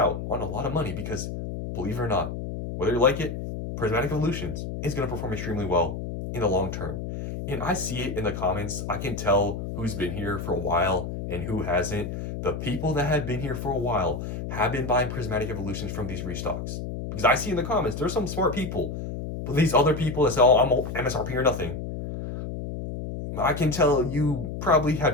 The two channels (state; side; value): noise; left; hum, 6 dB below the sound